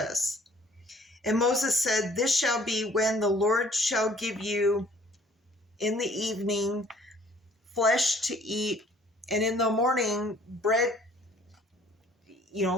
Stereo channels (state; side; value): normal; both; correlation 0.56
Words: And Moses said, This shall be when the Lord shall give you in the evening flesh to eat, and in the morning bread,